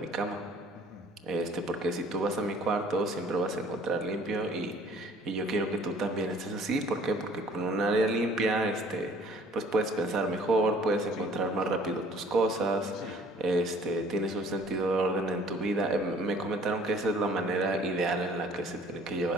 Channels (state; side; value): normal; both; correlation 0.54